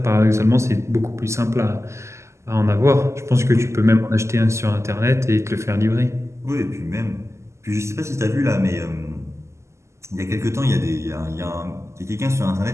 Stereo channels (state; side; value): late; left; 0.13 ms